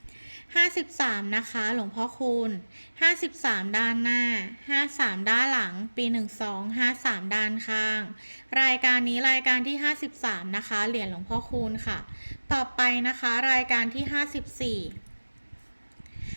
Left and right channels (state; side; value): inverted; both; correlation -1.00